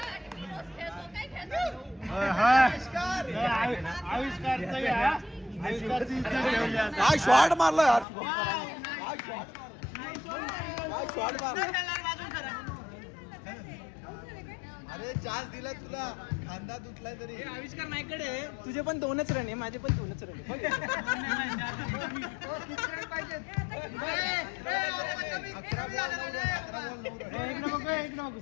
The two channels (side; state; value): right; drops out; at 8.1 s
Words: आविष्कारचा काय शॉट मारला यार. काय शॉट मारला. अरे चान्स दिला तुला. खांदा तुटलाय तरी. आविष्कार नाहीकडे तुझे पण 2च रन आहे. माझे पण 2च रन आहे.